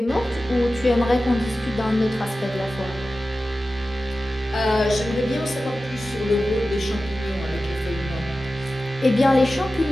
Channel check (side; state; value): both; normal; correlation 0.94